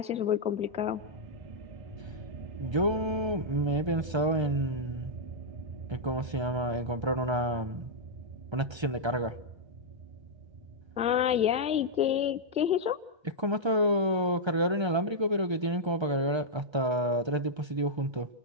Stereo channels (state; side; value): late; left; 1.3 ms